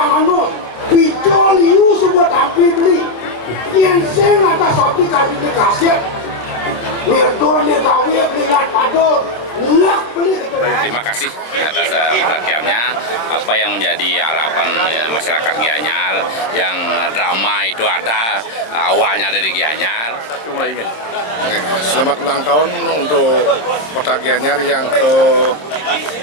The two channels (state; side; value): late; right; 26 ms